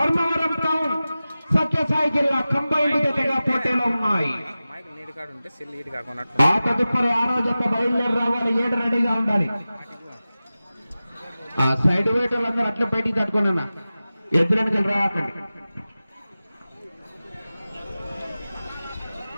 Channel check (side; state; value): both; inverted; correlation -0.96